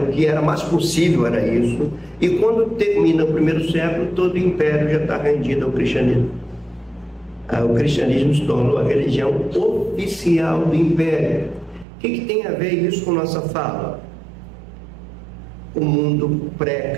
que era mais possível, era isso. E quando termina o primeiro século, todo o império já está rendido ao cristianismo. O cristianismo se tornou a religião oficial do império. O que tem a ver isso com nossa fala? O mundo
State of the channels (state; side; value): drops out; left; at 11.9 s